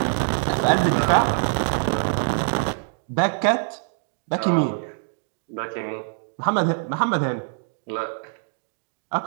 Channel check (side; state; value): left; silent; digital silence